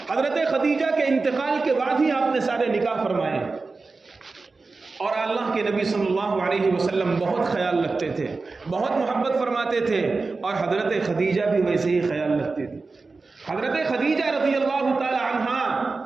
حضرت خدیجہ کے انتقال کے بعد ہی آپ نے سارے نکاح فرمائے، اور اللہ کے نبی صلی اللہ علیہ وسلم بہت خیال رکھتے تھے، بہت محبت فرماتے تھے، اور حضرت خدیجہ بھی ویسے ہی خیال رکھتے تھے۔ حضرت خدیجہ رضی اللہ تعالی عنہا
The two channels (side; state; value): left; quieter; 3.9 dB